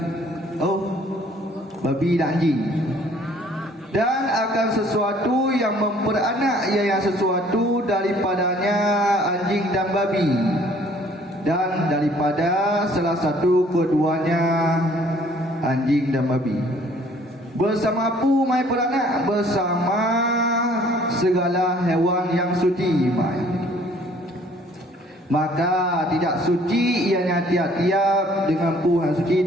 Oh, babi dan anjing. Dan akan sesuatu yang memperanak, iaitu sesuatu daripadanya anjing dan babi, dan daripada salah satu keduanya anjing dan babi. Bersama pu mai peranak, bersama segala hewan yang suci mai. Maka tidak suci ianya tiap-tiap dengan pu yang suci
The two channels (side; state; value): both; normal; correlation 0.58